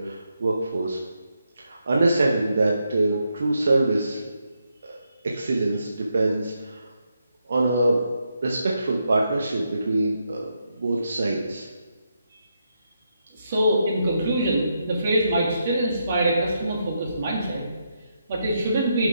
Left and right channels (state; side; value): inverted; both; correlation -0.82